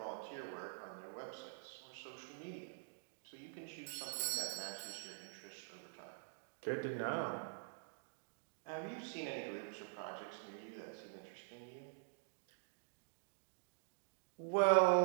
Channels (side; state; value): left; silent; digital silence